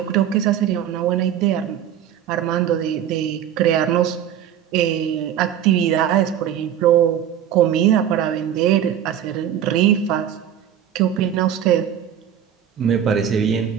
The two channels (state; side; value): quieter; left; 9.8 dB